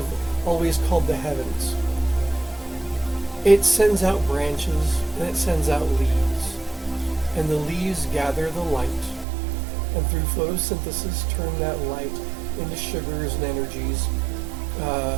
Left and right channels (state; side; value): drops out; left; at 9.2 s